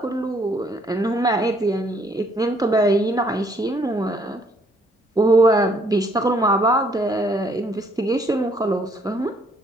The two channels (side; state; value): both; normal; correlation 0.66